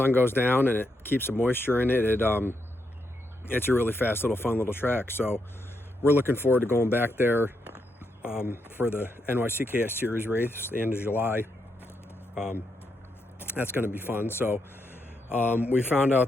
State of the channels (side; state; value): both; normal; correlation 0.81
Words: goes down and it keeps the moisture in it, it's a really fast little fun little track. So we're looking forward to going back there for the NYCKS Series race the end of July. That's going to be fun. So we found